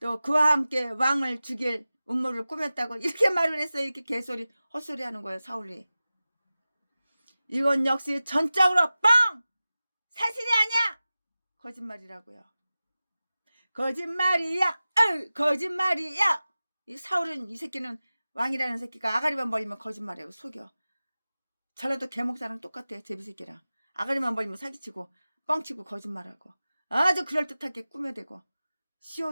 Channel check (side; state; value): both; inverted; correlation -0.96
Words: 그와 함께 왕을 죽일 음모를 꾸몄다고 이렇게 말을 했어요. 이렇게 개소리 헛소리 하는 거예요. 사울이. 이건 역시 전적으로 뻥! 사실이 아니야! 거짓말이라고요. 거짓말이야! 거짓말이야! 이 사울은 이 새끼는 왕이라는 새끼가 아가리만 벌리면 거짓말이라고 속여. 전라도 개목사랑 똑같아요. 제비새끼랑. 아가리만 벌리면 사기치고 뻥치고 거짓말하고 아주 그럴듯하게 꾸며대고